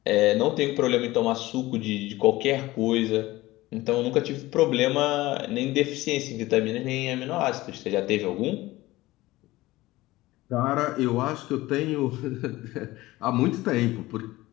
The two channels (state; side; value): quieter; right; 18.4 dB